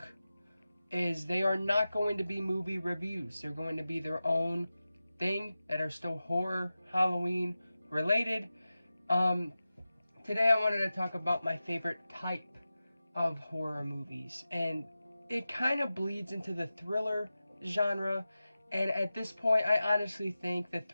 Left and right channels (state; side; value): inverted; both; correlation -0.94